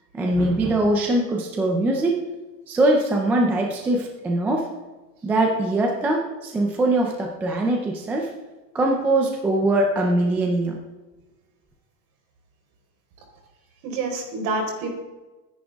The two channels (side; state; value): both; normal; correlation 0.56